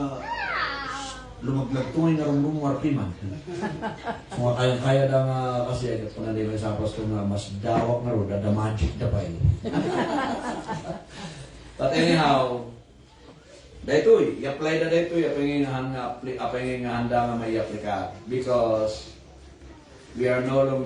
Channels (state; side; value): identical; both; correlation 1.00